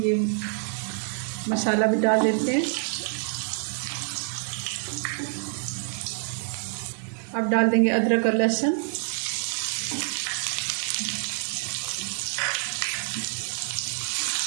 मसाला भी डाल देते हैं। अब डाल देंगे अदरक और लहसुन।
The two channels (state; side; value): silent; left; 60 dB below the other